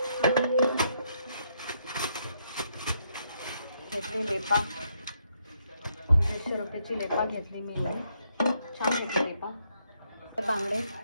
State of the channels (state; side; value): inverted; both; correlation -0.76